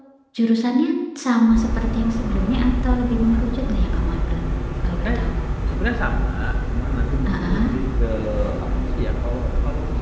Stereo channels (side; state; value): both; identical; correlation 1.00